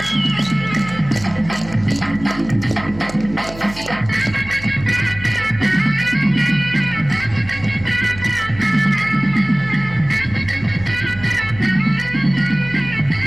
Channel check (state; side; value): noise; right; hum, 15 dB below the sound